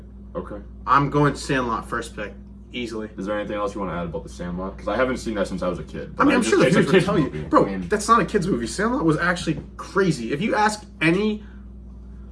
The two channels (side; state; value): both; identical; correlation 1.00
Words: Okay. I'm going Sandlot first pick, easily. Is there anything else you want to add about the Sandlot? Because I haven't seen that since I was a kid. I mean, I'm sure the kids would tell you, movie. bro. I mean, That's not a kids movie. Sandlot was actually crazy. If you ask any,